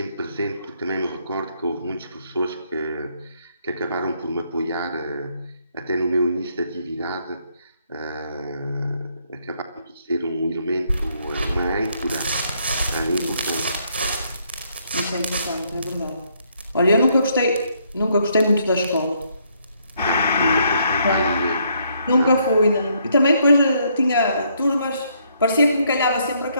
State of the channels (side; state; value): both; inverted; correlation -0.71